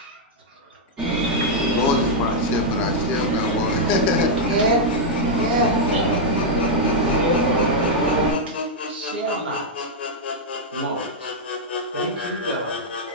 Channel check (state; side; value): normal; both; correlation -0.04